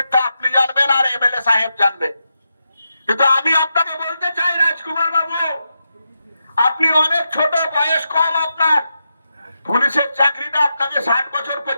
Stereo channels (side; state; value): both; inverted; correlation -0.87